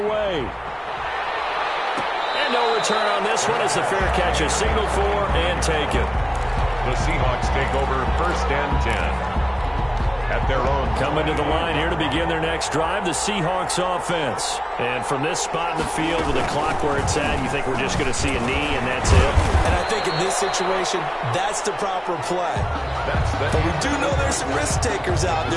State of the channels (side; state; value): both; identical; correlation 1.00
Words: And no return on this one as the fair catch is signaled for and taken. The Seahawks take over 1st and 10. At their own. Coming to the line here to begin their next drive, the Seahawks offense. And from this spot in the field with the clock where it's at, you think we're just going to see a knee and that's it? And I think in this situation, that's the proper play. But we do know there's some risk takers out